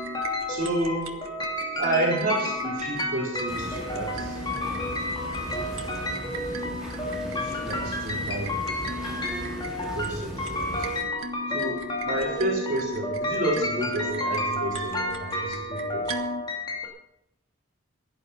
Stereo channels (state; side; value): normal; both; correlation 0.05